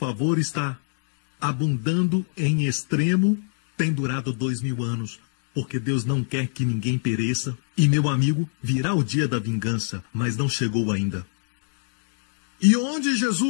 está abundando em extremo, tem durado 2000 anos, porque Deus não quer que ninguém pereça. E, meu amigo, virá o dia da vingança, mas não chegou ainda. E onde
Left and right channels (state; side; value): silent; right; 62 dB below the other